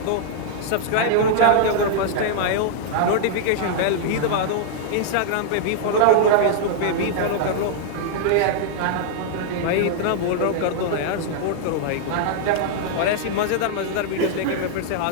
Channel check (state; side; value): different; both; correlation -0.01